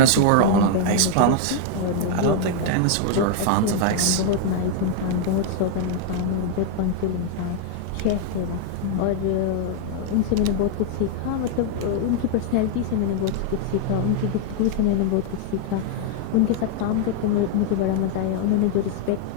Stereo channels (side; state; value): both; different; correlation 0.00